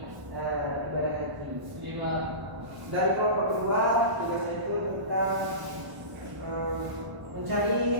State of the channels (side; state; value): left; late; 1.0 ms